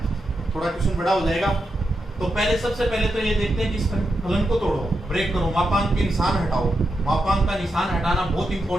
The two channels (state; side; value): normal; both; correlation 0.86